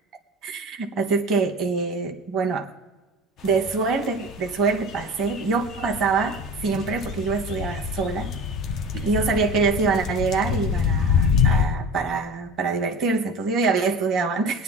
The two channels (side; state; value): both; normal; correlation 0.35